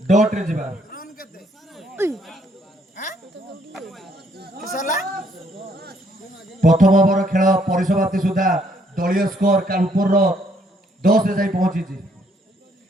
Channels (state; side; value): normal; both; correlation 0.68